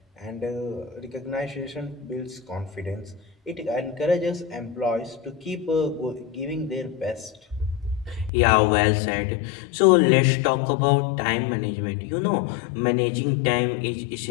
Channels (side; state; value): right; drops out; at 8.3 s